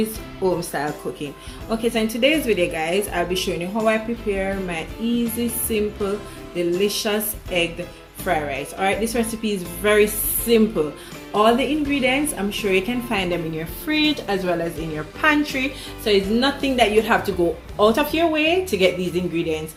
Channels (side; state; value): both; identical; correlation 1.00